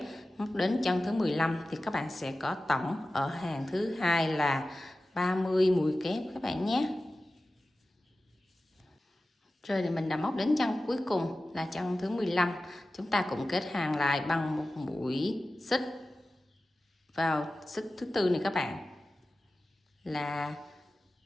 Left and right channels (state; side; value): normal; both; correlation 0.95